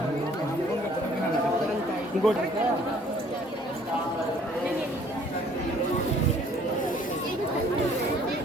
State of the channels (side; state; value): both; normal; correlation 0.58